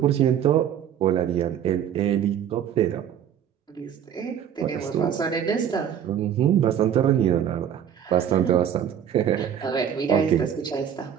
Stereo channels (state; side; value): quieter; left; 9.3 dB